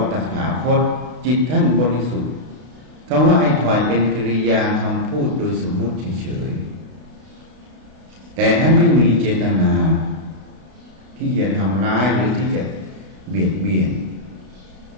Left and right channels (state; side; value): late; left; 32 ms